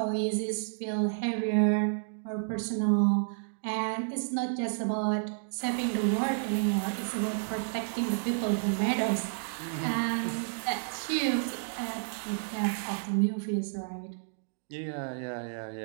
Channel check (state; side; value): silent; left; digital silence